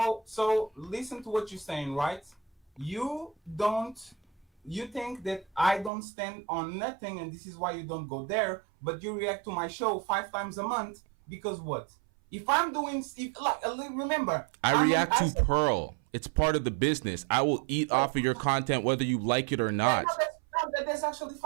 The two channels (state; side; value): drops out; left; at 5.9 s